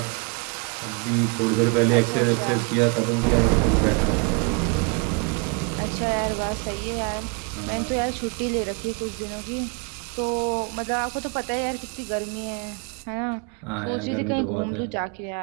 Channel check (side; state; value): left; quieter; 32.6 dB